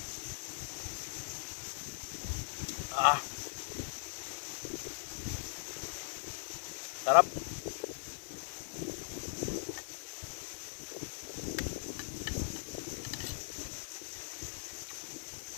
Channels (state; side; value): silent; right; 51 dB below the other